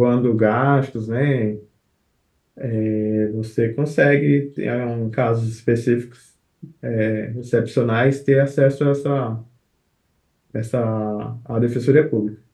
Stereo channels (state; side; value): identical; both; correlation 1.00